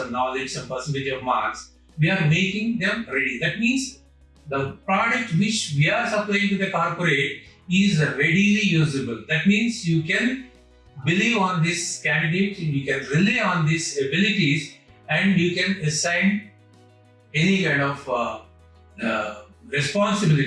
knowledge, some percentage of marks. We are making them ready. That means the product which we are supplying to the corporate is readily usable. That means you can believe on this candidate, you can rely on these abilities, and you can assign any kind of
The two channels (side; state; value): both; identical; correlation 1.00